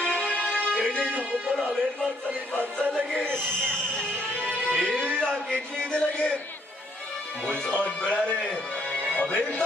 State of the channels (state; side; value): normal; both; correlation 0.69